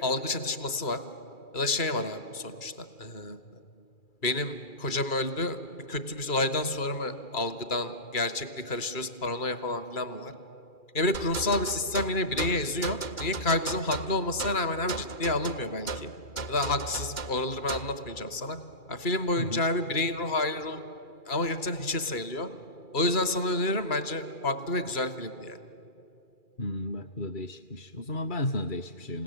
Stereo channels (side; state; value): right; late; 2.3 ms